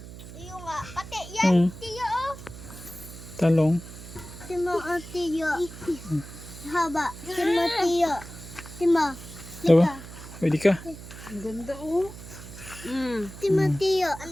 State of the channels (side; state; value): right; noise; hum, 14 dB below the sound